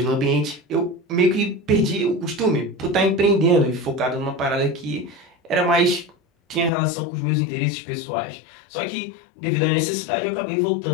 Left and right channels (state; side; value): drops out; right; at 6.7 s